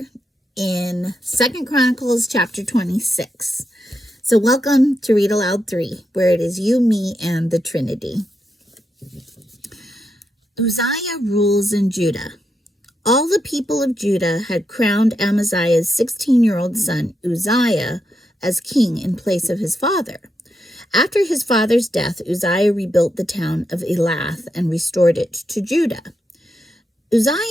in 2nd Chronicles chapter 26. So welcome to Read Aloud 3, where it is you, me, and the Trinity. Uzziah rules in Judah. All the people of Judah had crowned Amaziah's 16-year-old son Uzziah as king in place of his father. After his father's death, Uzziah rebuilt the town of Elath and restored it to Judah.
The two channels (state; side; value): normal; both; correlation 0.84